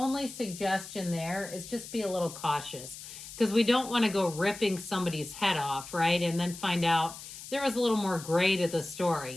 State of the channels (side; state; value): left; noise; hiss, 13 dB below the sound